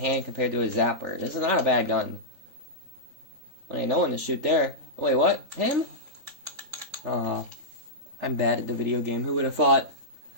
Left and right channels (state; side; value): late; left; 3.4 ms